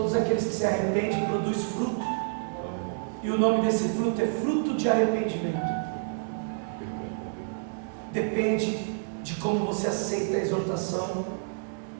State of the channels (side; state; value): left; silent; digital silence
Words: aqueles que se arrependem produzem fruto, e o nome desse fruto é fruto de arrependimento. Depende de como você aceita a exortação